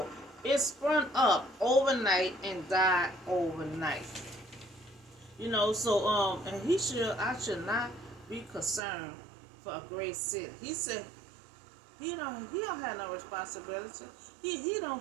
It sprung up overnight and died overnight. And I should not be concerned for a great city. He said he don't have no responsibility. He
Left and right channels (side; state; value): left; drops out; at 8.8 s